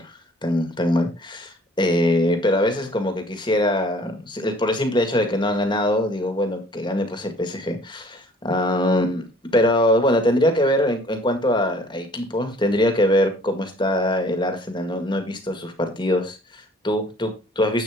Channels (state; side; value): normal; both; correlation 0.54